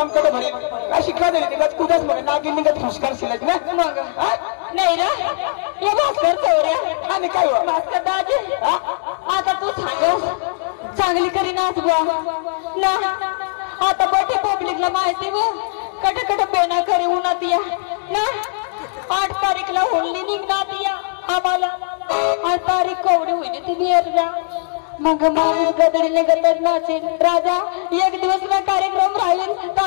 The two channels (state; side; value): silent; right; digital silence